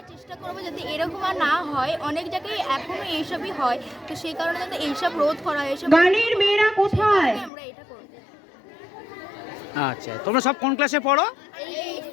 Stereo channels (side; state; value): right; drops out; at 7.5 s